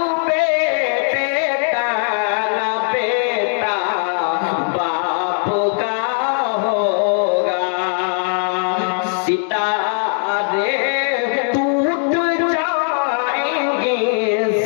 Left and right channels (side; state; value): right; silent; 55 dB below the other